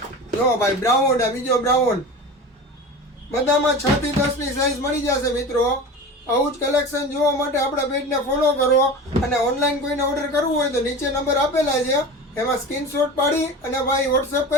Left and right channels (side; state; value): both; normal; correlation 0.32